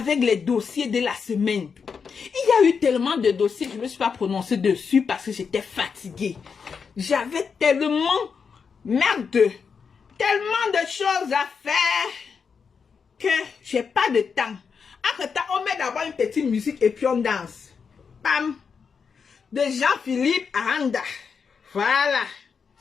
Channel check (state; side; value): quieter; right; 5.9 dB